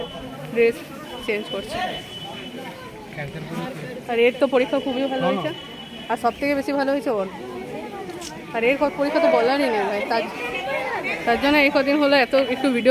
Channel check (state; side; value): identical; both; correlation 1.00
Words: ড্রেস চেঞ্জ করছে। আর এর তো পরীক্ষা খুবই ভালো হয়েছে, আর সব থেকে বেশি ভালো হয়েছে ওর। আর এর পরীক্ষা তো বলারই নেই ভাই, তার জন্য এই কদিন হলো এত একটু